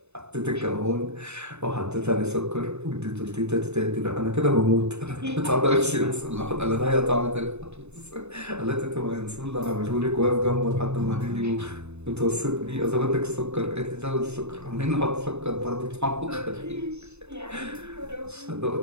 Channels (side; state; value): left; late; 0.81 ms